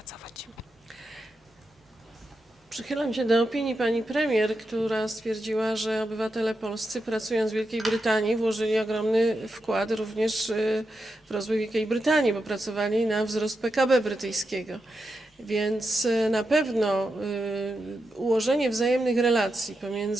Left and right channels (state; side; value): normal; both; correlation 0.87